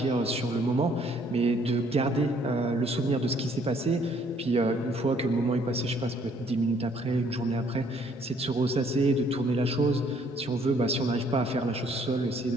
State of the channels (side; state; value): both; normal; correlation 0.63